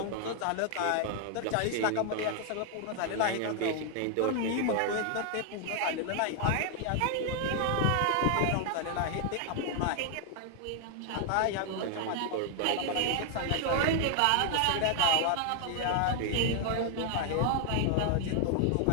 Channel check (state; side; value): different; both; correlation 0.00